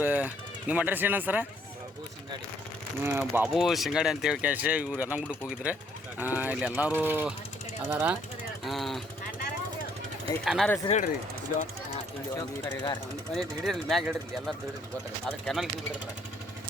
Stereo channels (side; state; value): both; normal; correlation 0.66